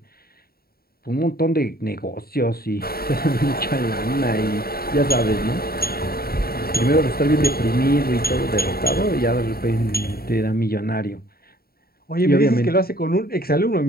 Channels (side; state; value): right; late; 0.44 ms